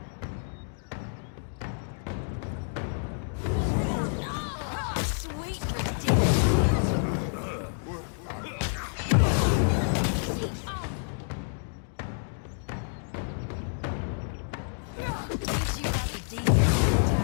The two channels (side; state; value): right; silent; digital silence